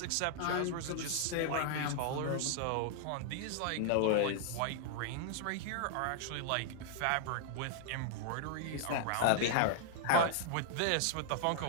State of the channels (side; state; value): both; different; correlation -0.01